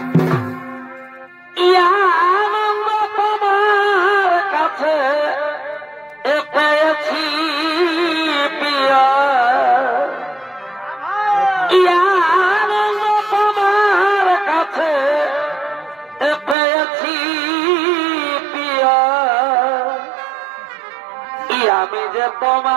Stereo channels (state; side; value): drops out; left; at 16.6 s